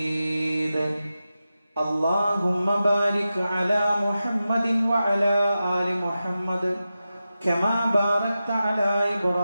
اللهم بارك على محمد وعلى آل محمد كما باركت على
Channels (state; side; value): inverted; both; correlation -0.92